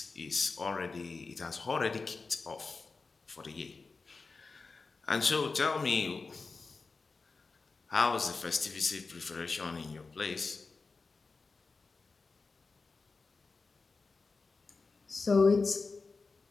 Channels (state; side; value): quieter; right; 4.2 dB